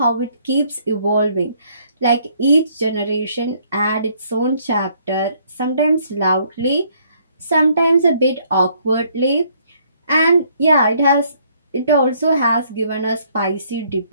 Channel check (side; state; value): both; inverted; correlation -0.66